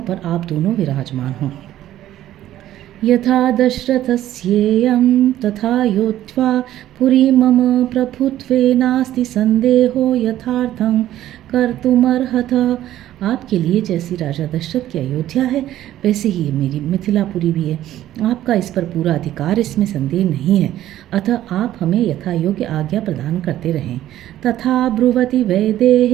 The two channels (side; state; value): left; quieter; 13.1 dB